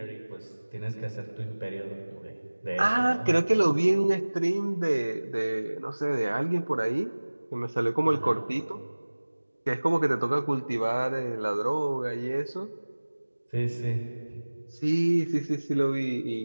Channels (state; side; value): inverted; both; correlation -1.00